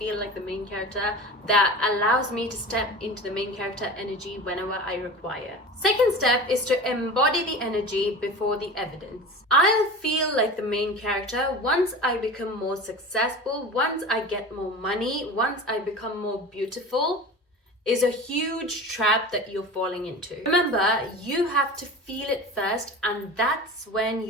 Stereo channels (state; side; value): normal; both; correlation 0.33